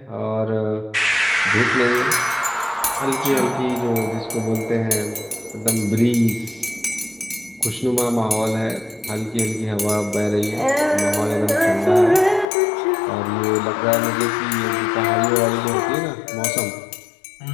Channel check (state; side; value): drops out; right; at 12.5 s